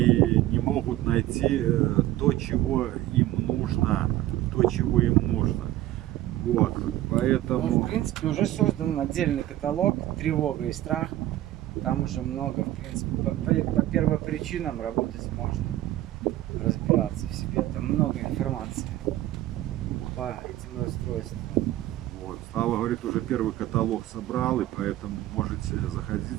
не могут найти то, чего им нужно. Вот, поэтому... Ну, в принципе, уже создан отдельный каталог «Тревога и страх». Там уже много, в принципе, по первопричинам работать можно, разбираться в себе. Там много информации по этим расстройствам. Вот. Слава говорит, уже первый каталог собрал, и поэтому можете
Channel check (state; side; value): quieter; left; 14.7 dB